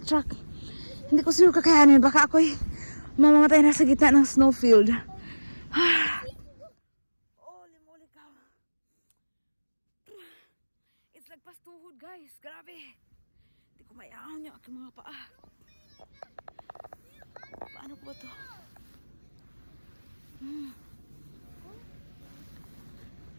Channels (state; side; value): inverted; both; correlation -1.00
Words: truck. Hindi ko siguro kakayanin. Baka ako'y mamamatay na sa gitna ng snowfield. Holy cow. It's like pastuhod, guys. Grabe. Hindi ko mayaon yung aking mga paa. Paano ko ba to?